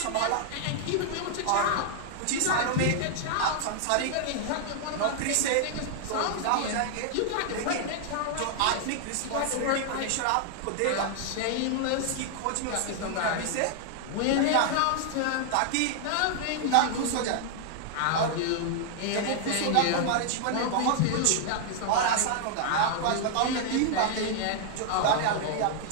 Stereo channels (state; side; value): different; both; correlation 0.00